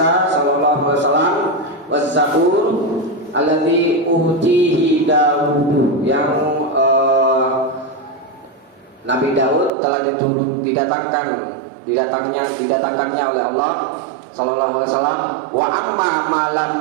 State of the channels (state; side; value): drops out; left; at 9.7 s